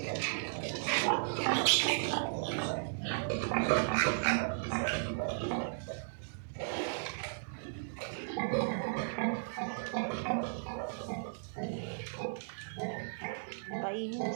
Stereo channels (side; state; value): left; silent; 54 dB below the other